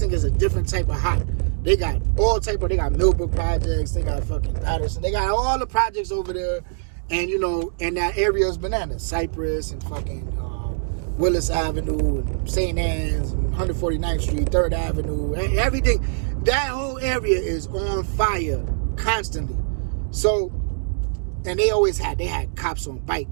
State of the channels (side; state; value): left; silent; digital silence